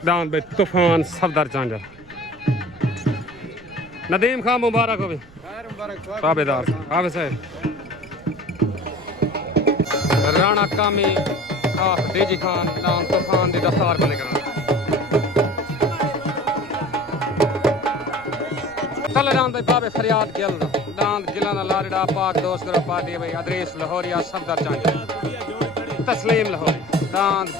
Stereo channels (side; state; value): right; noise; rumble, 24 dB below the sound